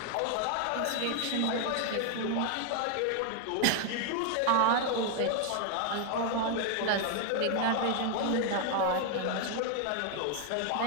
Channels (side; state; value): both; different; correlation 0.00